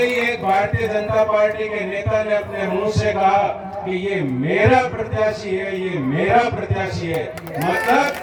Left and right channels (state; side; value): identical; both; correlation 1.00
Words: एक भारतीय जनता पार्टी के नेता ने अपने मुंह से कहा कि ये मेरा प्रत्याशी है, ये मेरा प्रत्याशी है।